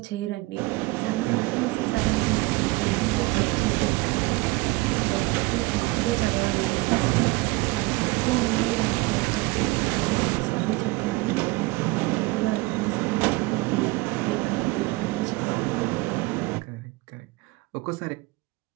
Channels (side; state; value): left; quieter; 22.8 dB